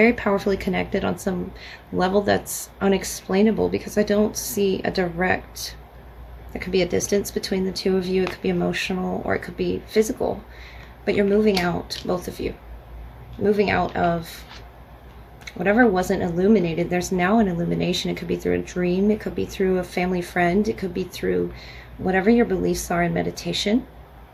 powerfully connected on some level that's unexplainable, because I don't see a direct, there could be a distance between the two of you. It could be emotional or it could be physical, but you're moving out, both of you. Moving out of whatever wasn't illuminated. There's now an illumination. It could be through a dream. It could be through a family friend. It could be through whatever your beliefs are in meditation.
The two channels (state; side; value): identical; both; correlation 1.00